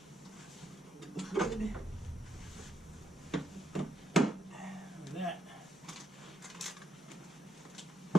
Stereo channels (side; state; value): both; normal; correlation 0.77